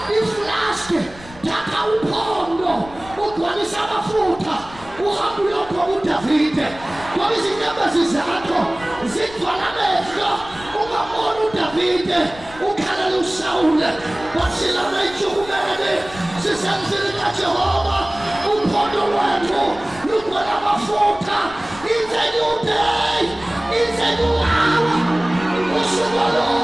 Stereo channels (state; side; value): noise; left; rumble, 19 dB below the sound